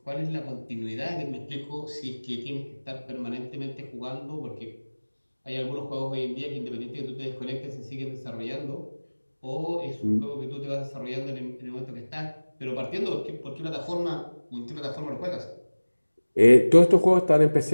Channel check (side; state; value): both; inverted; correlation -1.00